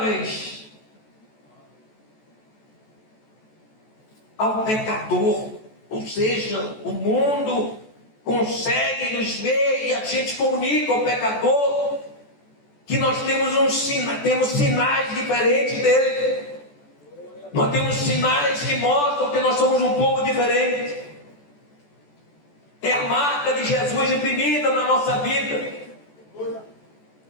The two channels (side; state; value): right; late; 14 ms